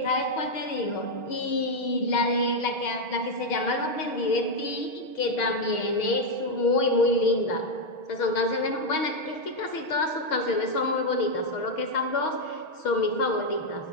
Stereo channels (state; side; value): late; right; 6.3 ms